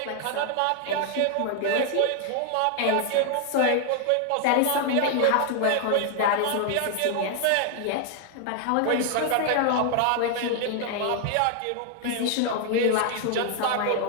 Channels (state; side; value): different; both; correlation 0.00